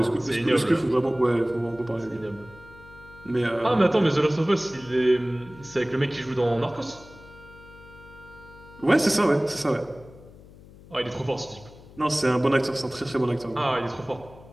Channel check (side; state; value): left; noise; hum, 21 dB below the sound